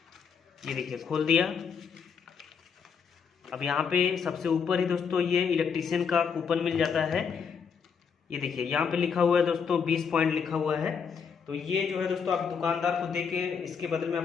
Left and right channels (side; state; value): right; quieter; 6.4 dB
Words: ये देखिए खोल दिया। अब यहाँ पे सबसे ऊपर ही दोस्तों ये इलेक्ट्रीशियन का कूपन मिल जाता है। ये देखिए यहाँ पे लिखा हुआ है दोस्तों 20 पॉइंट लिखा हुआ है। तो ये जो है दोस्तों आप दुकानदार को दे के इसके बदले में